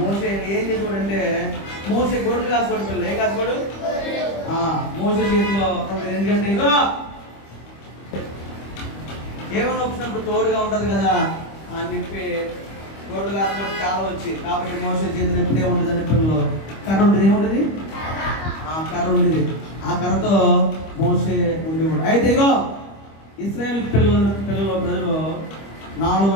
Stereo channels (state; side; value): late; right; 25 ms